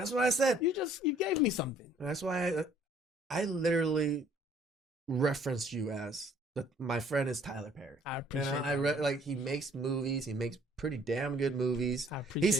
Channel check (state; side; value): normal; both; correlation 0.59